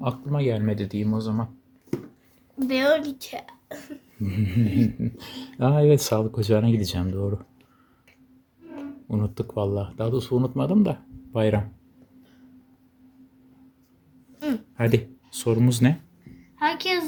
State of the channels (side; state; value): both; identical; correlation 1.00